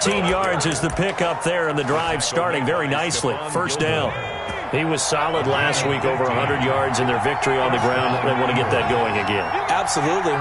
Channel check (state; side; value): identical; both; correlation 1.00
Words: yards is the pickup there, and the drive starting very nicely. First down. He was solid last week, over 100 yards in their victory on the ground. They want to get that going again. Absolutely.